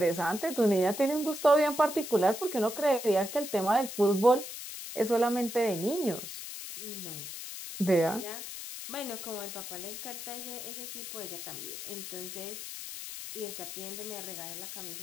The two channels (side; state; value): left; noise; hiss, 9 dB below the sound